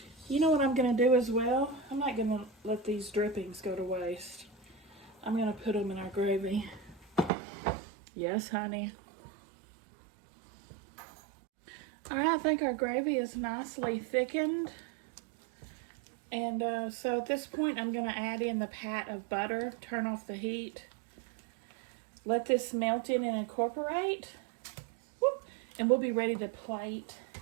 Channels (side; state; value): left; drops out; at 7.3 s